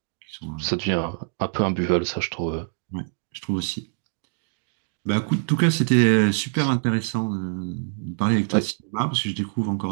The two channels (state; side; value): silent; left; digital silence